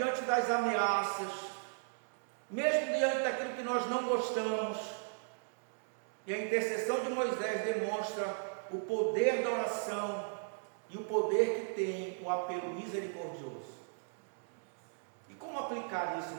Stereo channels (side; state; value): left; silent; digital silence